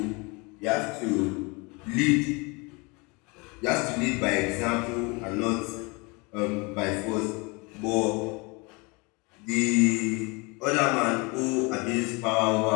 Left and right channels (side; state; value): right; quieter; 28.3 dB